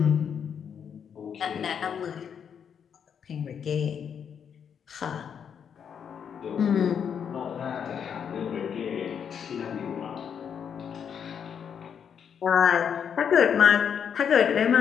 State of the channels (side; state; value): right; quieter; 7.7 dB